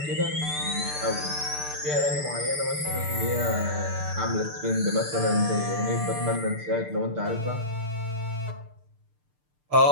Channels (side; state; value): left; late; 6.7 ms